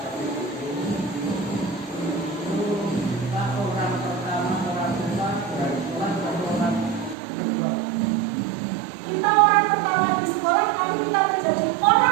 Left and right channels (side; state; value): left; drops out; at 7.2 s